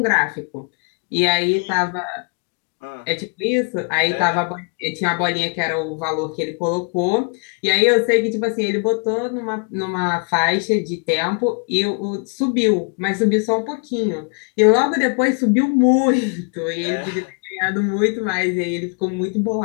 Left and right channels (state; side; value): quieter; right; 37.6 dB